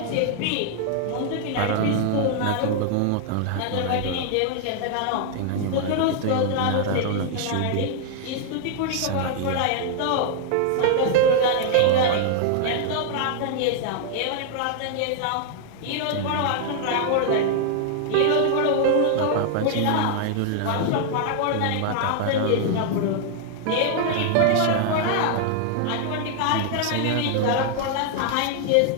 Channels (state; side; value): different; both; correlation 0.00